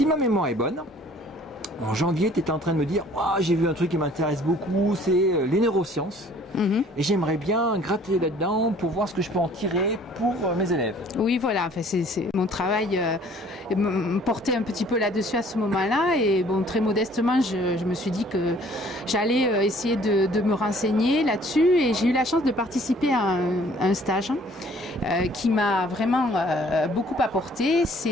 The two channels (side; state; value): both; normal; correlation 0.55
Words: ma mémoire est bonne, en janvier, tu étais en train de me dire oh, j'ai vu un truc qui m'intéresse beaucoup, c'est les neurosciences. Et j'aimerais bien gratter là-dedans pour voir ce que je peux en tirer pour mes élèves. Oui, voilà, enfin, c'est mon travail me portait un petit peu là-dessus à ce moment-là. Et bon, très modestement, je me suis dit que j'allais essayer de me renseigner là-dessus. Et j'ai eu la chance de participer à un stage qui m'a vraiment beaucoup apporté.